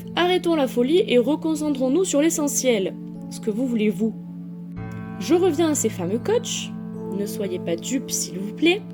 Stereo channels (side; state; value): both; identical; correlation 1.00